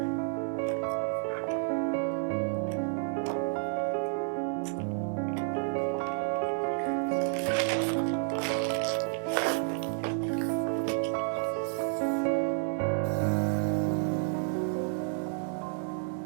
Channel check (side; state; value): left; silent; 57 dB below the other